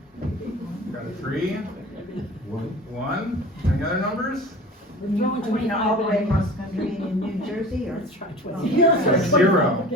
Got a 3? 1? Any other numbers? All the way across the country in New Jersey, or? Yes. 0.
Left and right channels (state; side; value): normal; both; correlation 0.40